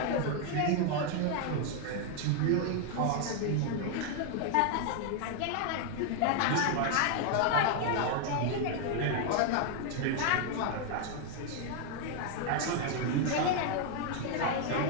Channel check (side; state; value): both; different; correlation 0.00